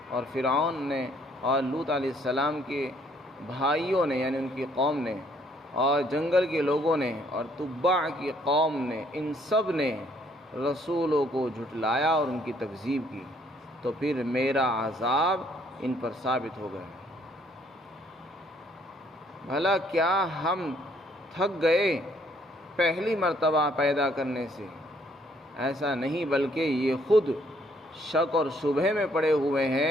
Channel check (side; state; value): both; normal; correlation 0.65